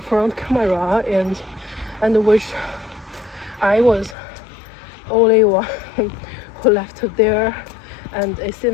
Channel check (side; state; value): right; drops out; at 4.2 s